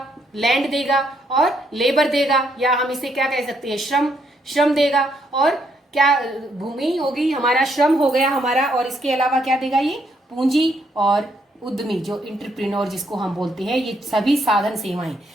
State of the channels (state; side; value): normal; both; correlation 0.74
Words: लैंड देगा और लेबर देगा, या हम इसे क्या कह सकते हैं? श्रम देगा। और क्या भूमि होगी हमारा, श्रम हो गया हमारा, और इसके अलावा क्या देगा? ये पूंजी और उद्यमी, जो इंटरप्रेन्योर जिसको हम बोलते हैं, ये सभी साधन सेवाएं।